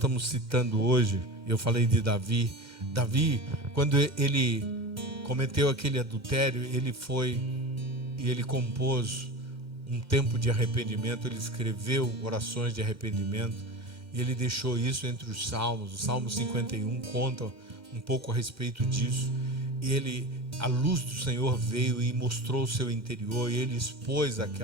citando hoje, eu falei de Davi, quando ele cometeu aquele adultério, ele foi e ele compôs um tempo de arrependimento, ele escreveu orações de arrependimento, e ele deixou isso entre os salmos. O Salmo 51 conta um pouco a respeito disso. A luz do Senhor veio e mostrou o seu interior, e ele expôs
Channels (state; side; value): late; left; 2.1 ms